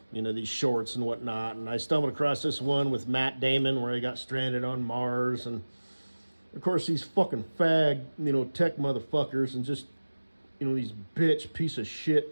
and these shorts and whatnot. And I stumbled across this one with Matt Damon where he got stranded on Mars, and of course these fucking fag, tech motherfuckers, and just these bitch piece of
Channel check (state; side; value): inverted; both; correlation -1.00